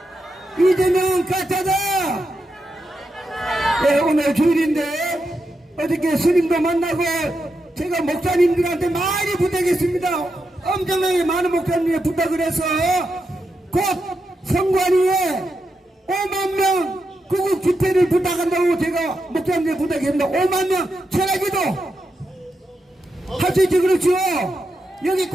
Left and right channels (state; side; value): normal; both; correlation 0.86